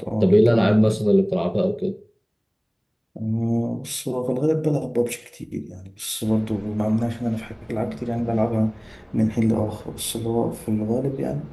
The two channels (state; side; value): identical; both; correlation 1.00